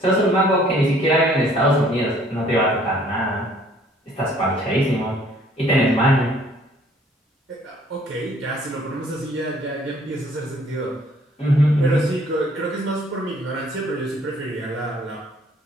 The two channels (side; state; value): both; normal; correlation 0.60